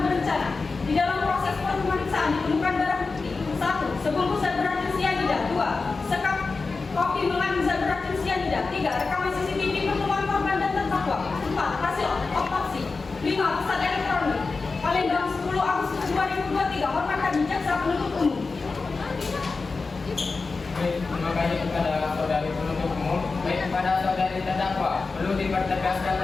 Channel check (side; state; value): right; quieter; 4.1 dB